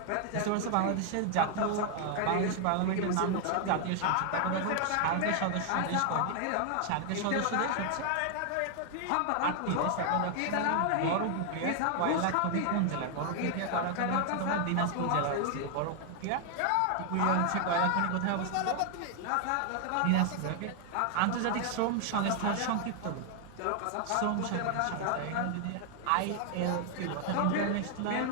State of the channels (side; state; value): both; different; correlation 0.00